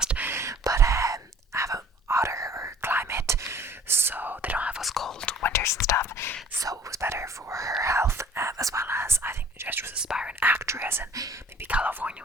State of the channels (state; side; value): normal; both; correlation 0.50